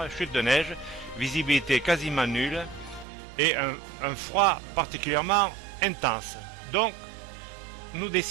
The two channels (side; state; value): left; drops out; at 3.1 s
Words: chute de neige, visibilité quasiment nulle et un froid particulièrement intense. Donc, nous